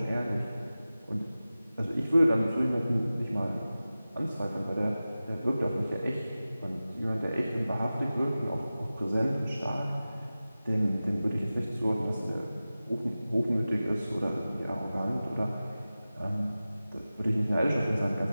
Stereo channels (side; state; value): both; inverted; correlation -0.96